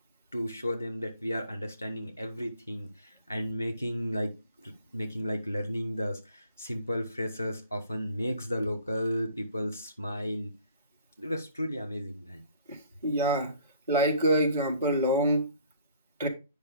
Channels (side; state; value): both; inverted; correlation -0.57